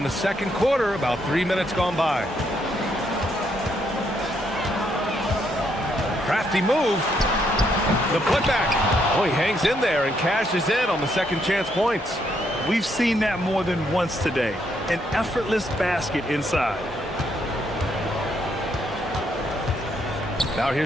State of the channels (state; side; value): normal; both; correlation 0.74